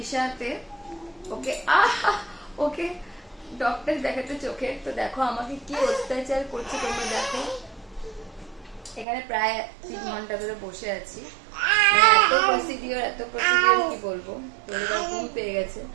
ওকে ওকে ডক্টর দেখাতে চোখে। তো দেখো আমাকে কি অত্যাচার করছে তোমরা দেখো। এখানে প্রায় 3 ঘন্টা ধরে বসে আছি, এত প্রসিডিওর কি বলবো। তো এবার ঘুম পেয়ে গেছে।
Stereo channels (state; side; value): drops out; left; at 9.1 s